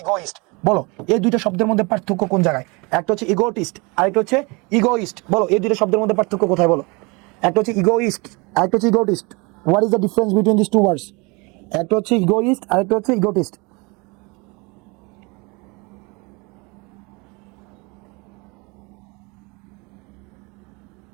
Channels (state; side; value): quieter; left; 28.0 dB